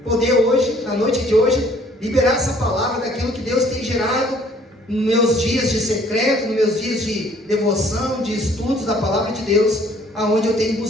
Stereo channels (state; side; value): normal; both; correlation 0.58